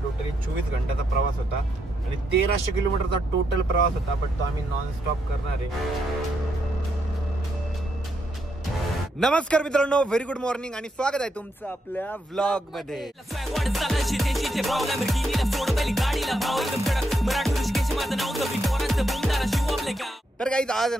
टोटली 24 घंट्याचा प्रवास होता आणि 1300 किलोमीटरचा टोटल प्रवास होता, पण तो आम्ही नॉन स्टॉप करणार आहे. नमस्कार मित्रांनो, व्हेरी गुड मॉर्निंग आणि स्वागत आहे तुमचं आपल्या व्लॉग मध्ये. तर गाईज आज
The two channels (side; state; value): both; normal; correlation 0.79